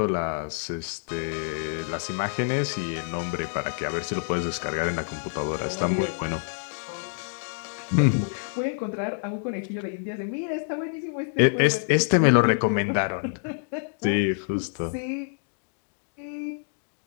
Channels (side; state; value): right; silent; digital silence